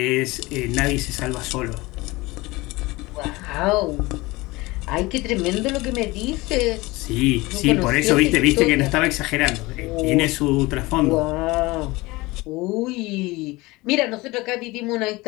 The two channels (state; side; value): quieter; right; 21.7 dB